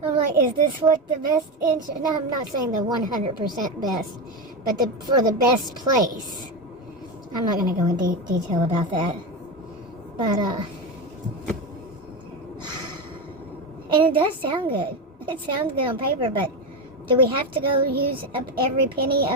I'm like, is this what the best insurance? No, I'm not saying the 100% best, but for the best place. I'm not going to go in detail about that, but And it does sound good. It sounds good on paper, but do we have to go use up every penny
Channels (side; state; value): both; normal; correlation 0.16